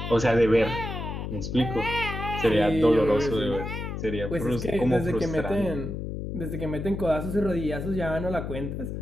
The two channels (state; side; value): noise; left; hum, 5 dB below the sound